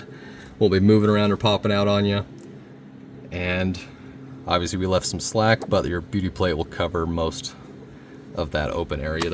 won't be moving around or popping out on you. And obviously we left some slack, but your beauty plate will cover most of that open area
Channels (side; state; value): both; identical; correlation 1.00